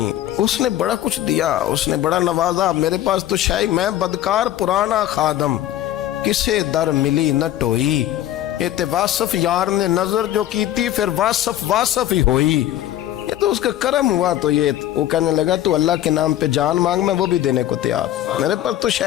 اس نے بڑا کچھ دیا، اس نے بڑا نوازا۔ میرے پاس تو شاید میں بدکار پرانا خادم، کسے در ملی نہ ٹوئی، ایت واصف یار نے نظر جو کی تھی، پھر واصف ہی ہوئی۔ یہ تو اس کا کرم ہوا۔ تو یہ وہ کہنے لگا تو اللہ کے نام پہ جان مانگ، میں وہ بھی دینے کو تیار۔ میرے پاس تو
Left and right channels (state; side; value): quieter; right; 12.8 dB